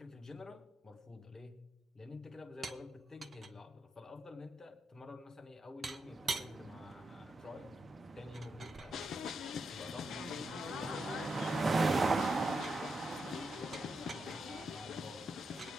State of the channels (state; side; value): normal; both; correlation 0.85